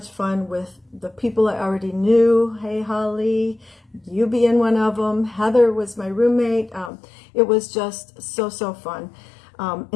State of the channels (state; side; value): drops out; right; at 6.9 s